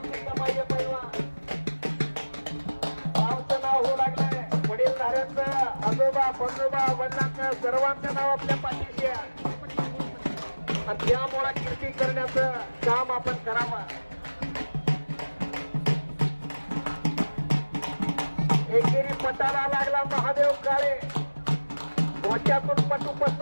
आजोबा बंजोबा वडिलांचं सर्वांचं नाव आपल्या पाठीशी आहे. आणि त्यामुळे कीर्ती करण्याचं काम आपण करावं. एकेरी पटाला लागला महादेव काळे. डोक्यातून पटू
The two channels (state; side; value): inverted; both; correlation -1.00